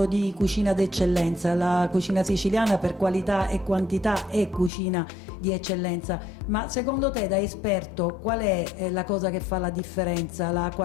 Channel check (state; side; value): drops out; right; at 4.7 s